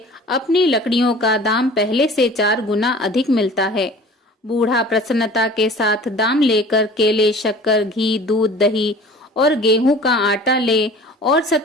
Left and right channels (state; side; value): normal; both; correlation 0.44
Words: अपनी लकड़ियों का दाम पहले से 4 गुना अधिक मिलता है। बूढ़ा प्रसन्नता के साथ दाम लेकर केले, शक्कर, घी, दूध, दही और गेहूं का आटा ले और